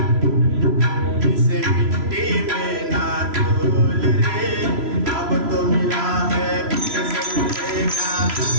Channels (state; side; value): late; left; 3.0 ms